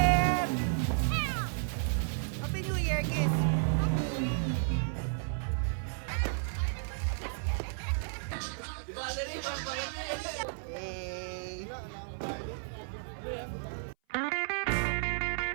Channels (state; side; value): silent; left; 56 dB below the other